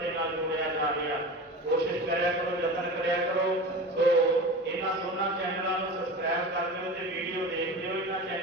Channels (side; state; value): both; normal; correlation 0.31